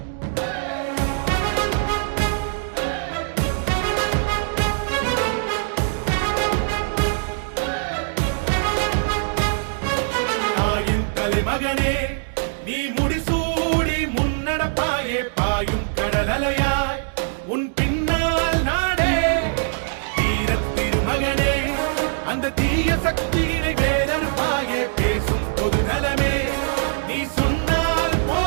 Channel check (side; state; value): left; silent; digital silence